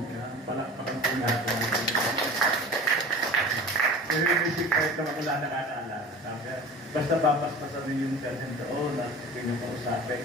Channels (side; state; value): both; normal; correlation 0.37